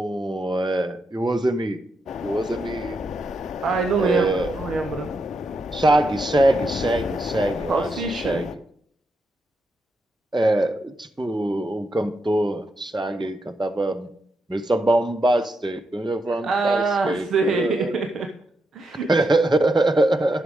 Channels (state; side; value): normal; both; correlation 0.83